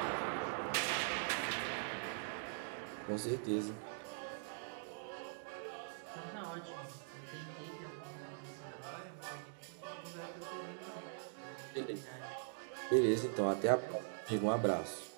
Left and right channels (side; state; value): left; silent; digital silence